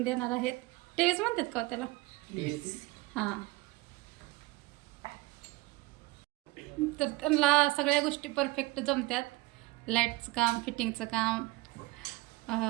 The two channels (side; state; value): left; quieter; 21.2 dB